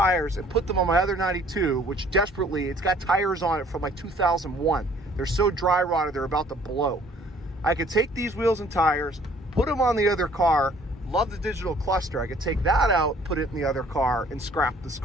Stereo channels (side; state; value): both; normal; correlation 0.57